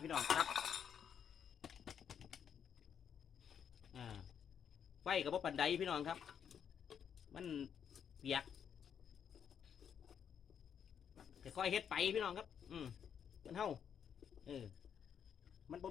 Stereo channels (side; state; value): right; quieter; 8.1 dB